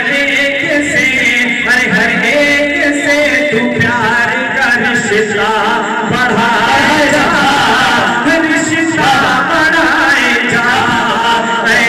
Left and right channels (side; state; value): both; identical; correlation 1.00